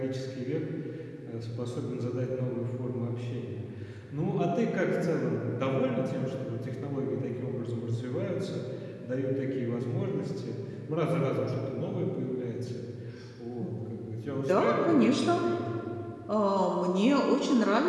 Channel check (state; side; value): identical; both; correlation 1.00